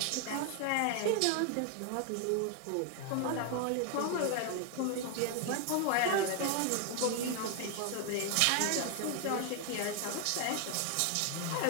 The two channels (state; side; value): different; both; correlation 0.00